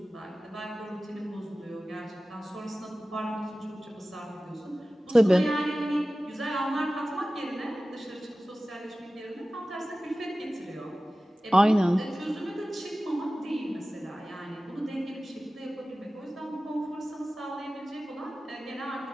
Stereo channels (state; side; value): normal; both; correlation 0.96